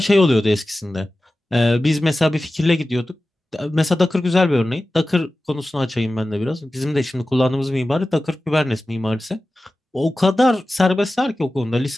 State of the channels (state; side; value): normal; both; correlation 0.95